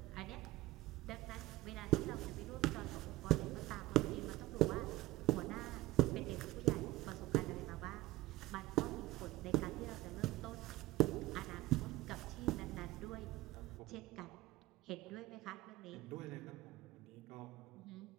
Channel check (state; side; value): quieter; left; 18.2 dB